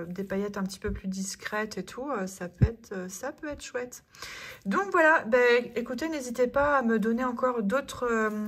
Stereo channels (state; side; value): identical; both; correlation 1.00